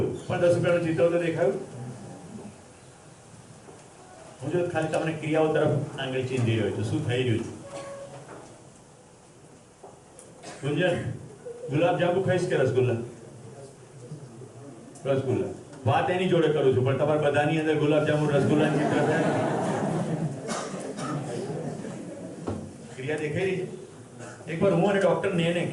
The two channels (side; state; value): both; identical; correlation 1.00